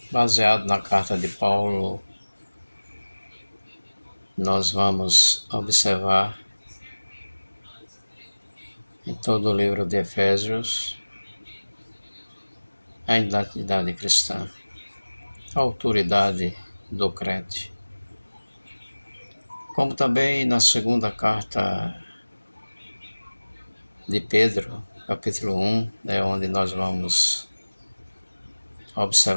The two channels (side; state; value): both; inverted; correlation -1.00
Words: Baseado na carta de Paulo, nós vamos observar em todo o livro de Efésios a identidade cristã, a autoridade do crente. Como também na segunda carta de Pedro, capítulo 1, é onde nós vamos